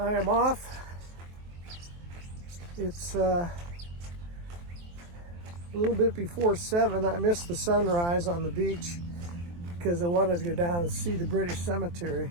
am off. It's a little bit before 7. I missed the sunrise on the beach because I wanted to go down and see the British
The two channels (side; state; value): left; late; 23 ms